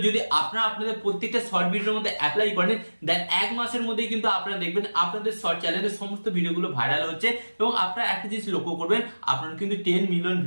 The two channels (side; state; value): both; inverted; correlation -1.00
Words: যদি আপনারা আপনাদের প্রত্যেকটা শর্ট ভিডিওর মধ্যে অ্যাপ্লাই করেন, দেন এক মাসের মধ্যেই কিন্তু আপনারা দেখবেন আপনাদের শর্ট চ্যানেলের সমস্ত ভিডিওগুলো ভাইরাল হচ্ছে এবং আপনারা একটা জিনিস লক্ষ্য করবেন, আপনারা কিন্তু 10 মিলিয়ন